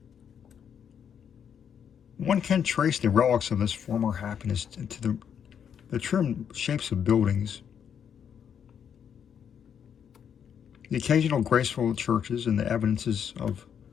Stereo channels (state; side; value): quieter; right; 8.1 dB